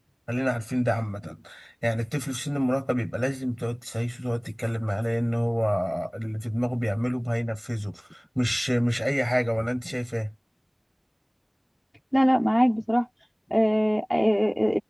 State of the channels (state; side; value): identical; both; correlation 1.00